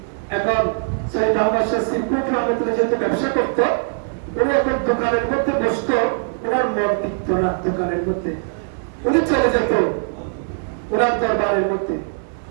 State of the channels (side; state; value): left; silent; 65 dB below the other